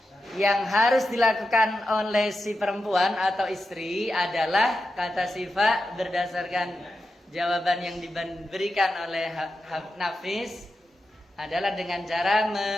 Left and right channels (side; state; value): both; normal; correlation 0.89